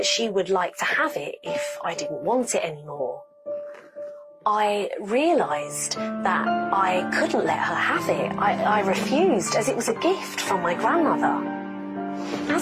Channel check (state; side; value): identical; both; correlation 1.00